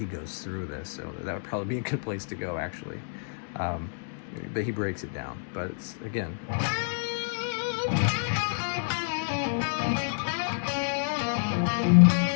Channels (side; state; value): right; silent; digital silence